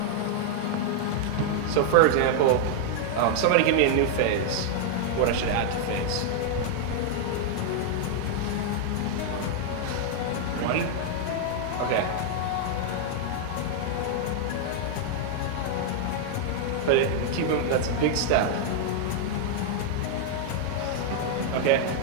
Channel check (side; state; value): both; different; correlation 0.00